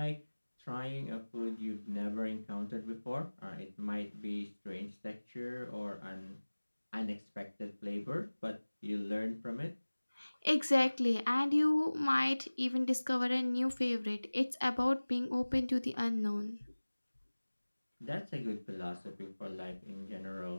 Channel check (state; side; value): inverted; both; correlation -1.00